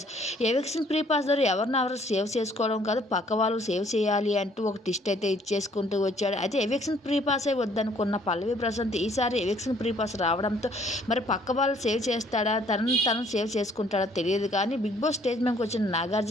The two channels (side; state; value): both; normal; correlation 0.62